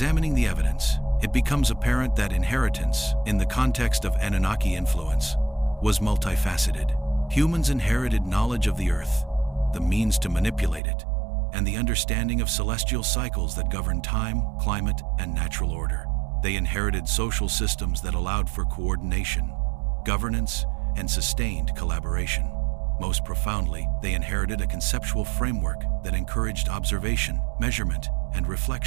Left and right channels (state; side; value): drops out; left; at 10.8 s